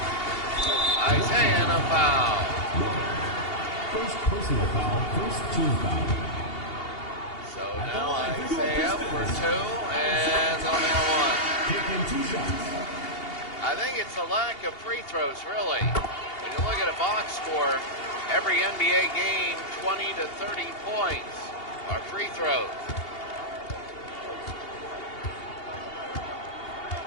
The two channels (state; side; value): late; right; 2.8 ms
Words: Isaiah and a foul. First personal foul, first team foul. So now Isaiah for 2, and they'll nail 1. Taking 2 shots. I think it's a lack of free throws, really. When you look at a box score, every NBA game, 20 to 30 points are free throws.